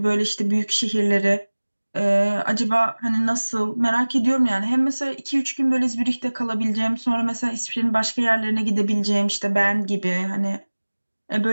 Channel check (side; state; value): both; inverted; correlation -1.00